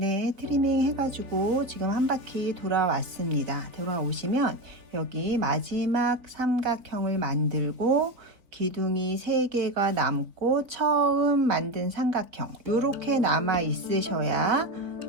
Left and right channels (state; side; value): late; left; 4.1 ms